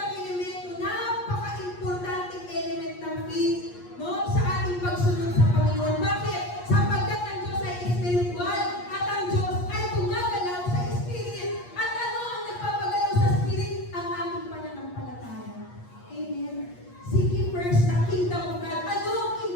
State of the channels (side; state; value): right; late; 8.4 ms